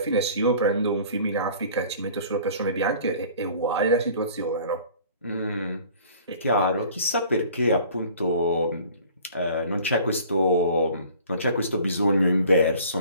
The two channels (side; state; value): both; inverted; correlation -0.49